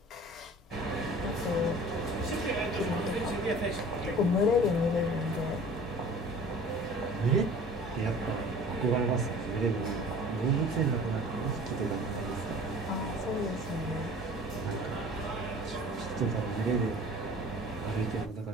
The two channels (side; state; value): both; normal; correlation 0.45